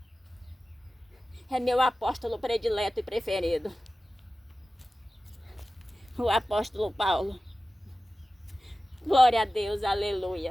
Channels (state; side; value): normal; both; correlation 0.96